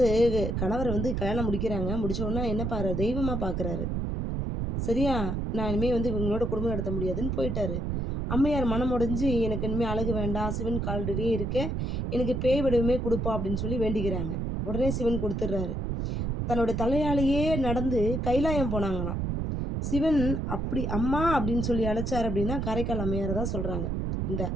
கணவர் வந்து கல்யாணம் முடிக்கிறாங்க. முடிச்ச உடனே என்ன தெய்வமா பார்க்குறாரு. சரியா? நான் இனிமே வந்து இவங்களோட குடும்பம் நடத்த முடியாதுன்னு போயிட்டாரு. அம்மையார் மனம் உடைஞ்சு, "எனக்கு இனிமே அழகு வேண்டாம். சிவன் கால்கடியே இருக்கேன். எனக்கு பேய் வடிவமே குடுப்பா" அப்படின்னு சொல்லி வேண்டிக்கிறாங்க. உடனே சிவன் குடுத்துடுறாரு. தன்னோட தலையாலேயே நடந்து கைலாயம் போனாங்களாம். சிவன் அப்படி "அம்மா" அப்படின்னு சொல்லி அழைச்சாரு அப்படின்னா, காரைக்கால் அம்மையார தான் சொல்றாங்க. இந்த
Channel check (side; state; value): right; noise; rumble, 1 dB below the sound